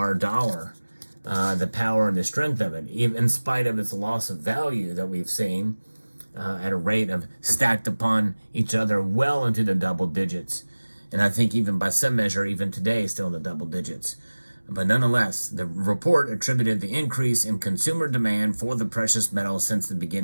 dollar, the power and the strength of it, even in spite of its loss of value that we've seen at a rate of stacked upon each other well into the double digits. And I think even by some measure, even today, still in the double digits. But nonetheless, the report attributed the increase in consumer demand for the precious metal since the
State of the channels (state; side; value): inverted; both; correlation -1.00